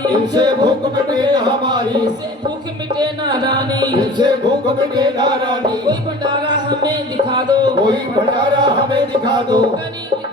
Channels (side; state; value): both; normal; correlation 0.42